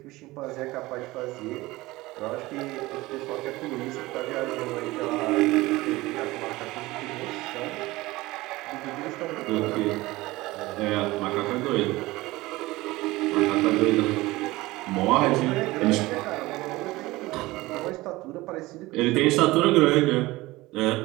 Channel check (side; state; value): left; quieter; 19.7 dB